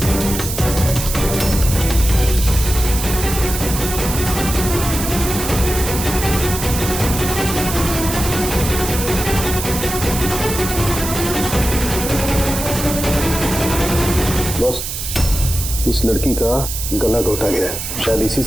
इस लड़की का गला घोटा गया है, शायद इसी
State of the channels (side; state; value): right; noise; hiss, 5 dB below the sound